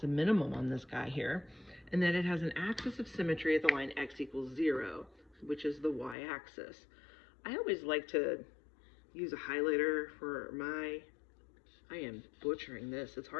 a minimum on this guy here. And then it has an axis of symmetry at the line x equals 0, which is the y-axis. I always like to use a highlighter for I am butchering this. It's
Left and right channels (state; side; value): drops out; right; at 6.2 s